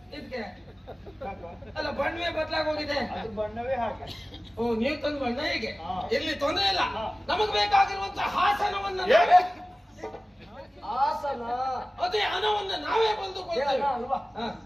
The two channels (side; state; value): both; normal; correlation 0.97